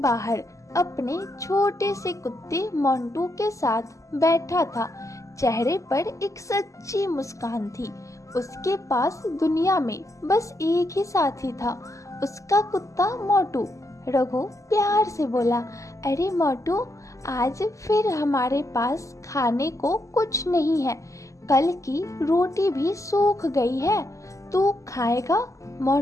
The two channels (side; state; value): right; late; 0.16 ms